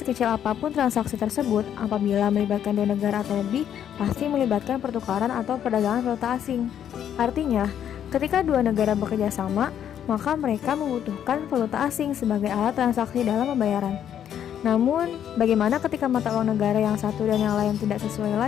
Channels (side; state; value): right; quieter; 9.6 dB